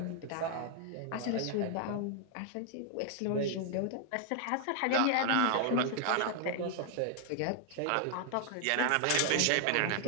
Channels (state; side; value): different; both; correlation 0.00